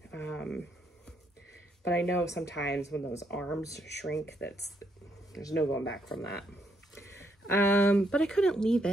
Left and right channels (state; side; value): normal; both; correlation 0.75